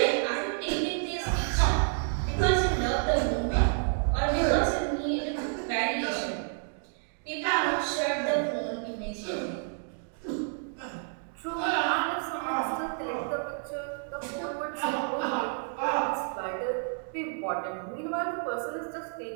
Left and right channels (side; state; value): left; silent; 58 dB below the other